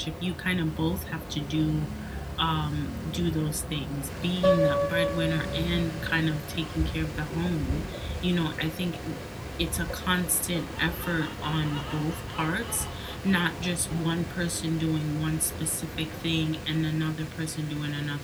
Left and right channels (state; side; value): identical; both; correlation 1.00